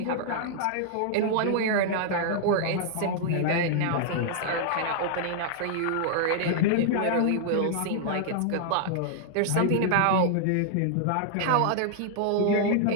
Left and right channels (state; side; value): different; both; correlation -0.01